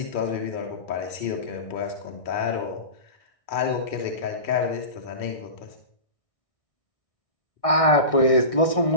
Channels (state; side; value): late; right; 1.6 ms